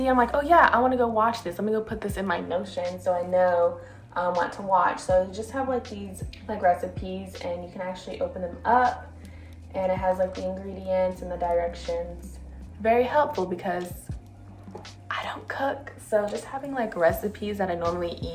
I'm like, oh yeah, I want to go watch this. Let me go put this in my Notion so I know what to watch. So you just have like these like recipes, and you can actually open them up. And it has like the ingredients and the directions. Very helpful because I don't cook. So just having like recipes that I normally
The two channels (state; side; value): identical; both; correlation 1.00